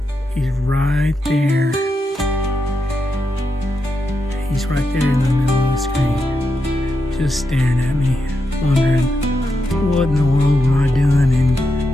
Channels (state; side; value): normal; both; correlation 0.85